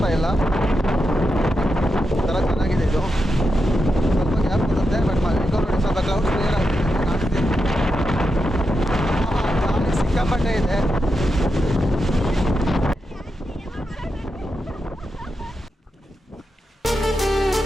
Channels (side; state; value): both; normal; correlation 0.87